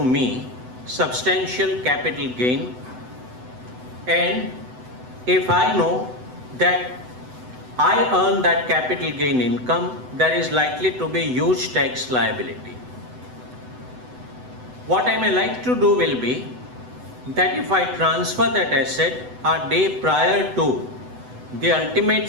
me substantial capital gain, and if I know that I earn that capital gain income, there is likely to be huge tax liability. What I may like to do will be that if I transfer that asset a day prior to the ultimate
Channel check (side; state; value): left; late; 8.0 ms